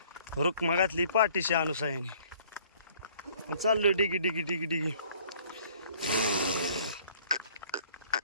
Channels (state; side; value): inverted; both; correlation -0.57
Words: रुक्मा घातली पाठीशी अनुसायाने. चाललो डिगी डिगी डिगी डिगी.